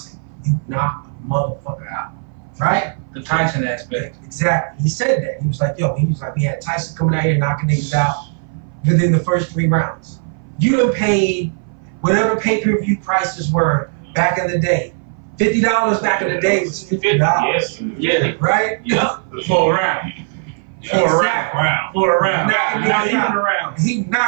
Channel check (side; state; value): left; silent; 60 dB below the other